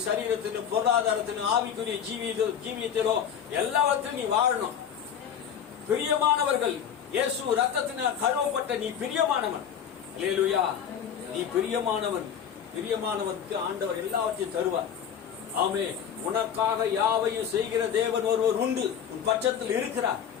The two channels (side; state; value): right; quieter; 8.4 dB